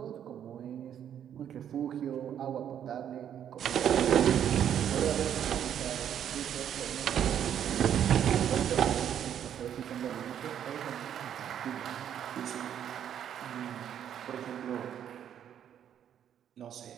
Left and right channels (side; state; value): left; quieter; 9.6 dB